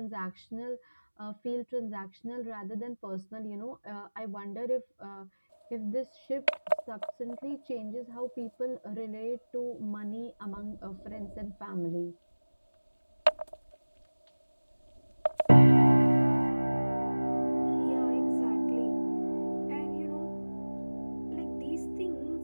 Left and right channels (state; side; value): inverted; both; correlation -1.00